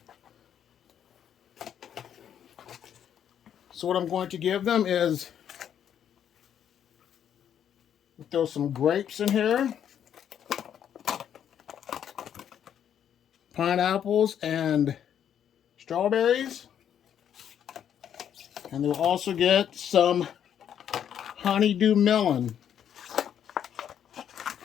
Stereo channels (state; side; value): quieter; right; 9.3 dB